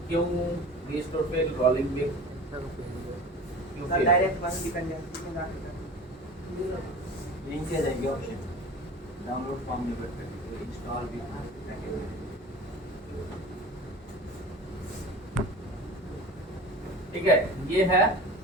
क्यों रिस्टोर पे रोलिंग में क्यों सर fail? डायरेक्ट बस डिपेंडेंसी में डाल लिंक दे देंगे ऑप्शन डाउनलोड फॉर्म में बैठ कर इंस्टॉल भी ठीक है, ये है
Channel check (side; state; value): both; normal; correlation 0.37